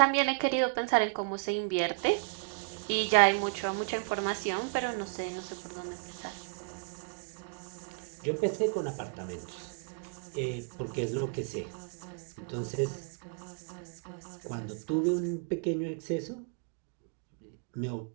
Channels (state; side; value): quieter; left; 35.1 dB